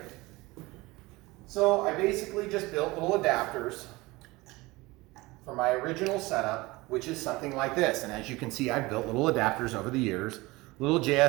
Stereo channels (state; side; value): quieter; left; 21.6 dB